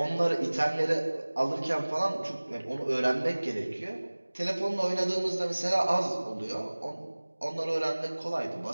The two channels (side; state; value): both; inverted; correlation -1.00